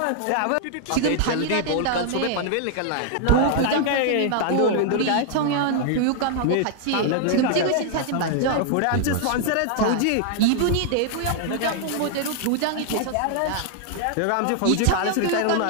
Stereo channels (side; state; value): both; different; correlation 0.00